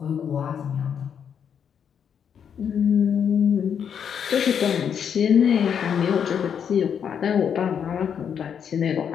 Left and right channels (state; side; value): quieter; right; 7.8 dB